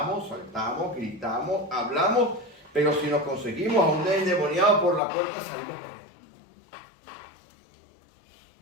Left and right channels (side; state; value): right; drops out; at 5.0 s